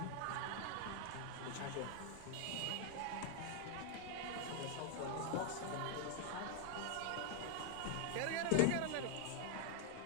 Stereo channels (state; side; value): different; both; correlation 0.00